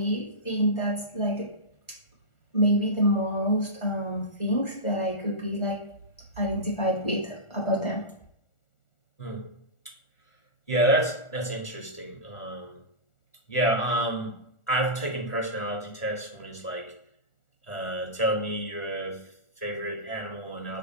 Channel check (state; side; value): late; right; 1.4 ms